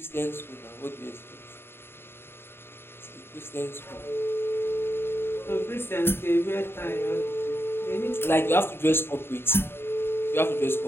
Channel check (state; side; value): late; right; 0.11 ms